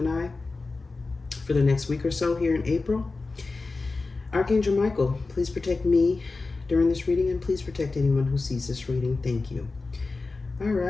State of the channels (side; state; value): right; quieter; 3.7 dB